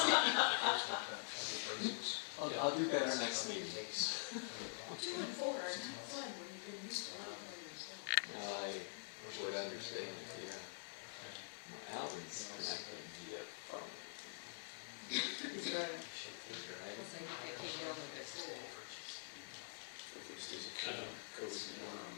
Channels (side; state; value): right; silent; digital silence